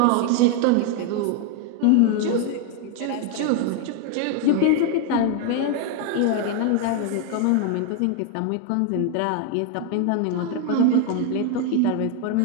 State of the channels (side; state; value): both; different; correlation 0.01